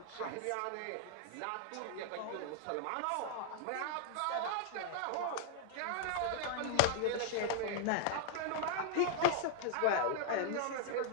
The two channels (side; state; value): both; different; correlation -0.01